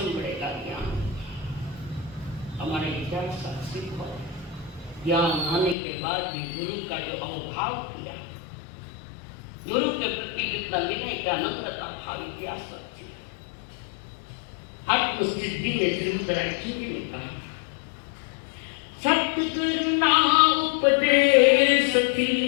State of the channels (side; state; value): right; drops out; at 5.8 s